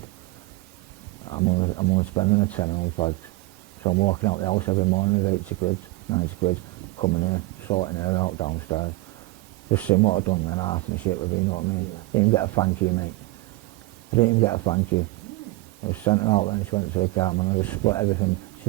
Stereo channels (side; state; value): left; quieter; 20.3 dB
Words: I'm only spending a tenner on fags. So I'm walking out the house every morning with 80 quid, 90 quid, coming here, sorting her out downstairs. Just seeing what I'd done, then half my shit with me, you know what I mean? Didn't even get a thank you, mate. I didn't even get a thank you. I just sent her out then, she went to the car, man, I just split everything.